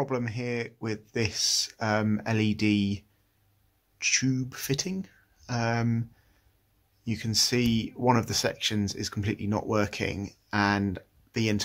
here with this LED tube fitting. You can see one of the sections is completely not working and the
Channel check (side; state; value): both; identical; correlation 1.00